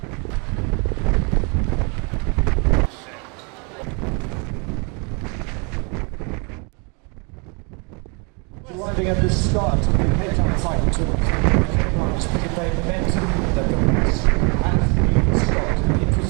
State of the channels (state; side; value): quieter; left; 33.5 dB